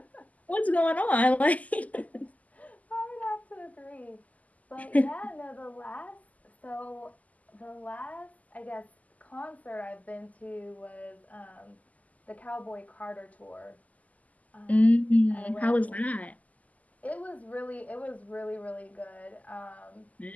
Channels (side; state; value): right; late; 0.075 ms